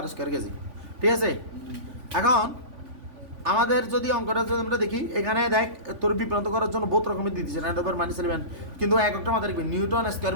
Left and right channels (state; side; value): late; left; 3.5 ms